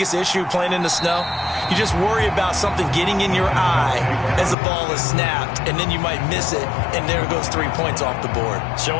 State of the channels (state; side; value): drops out; right; at 4.5 s